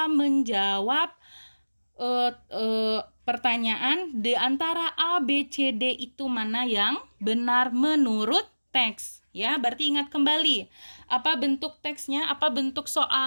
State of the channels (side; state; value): both; inverted; correlation -1.00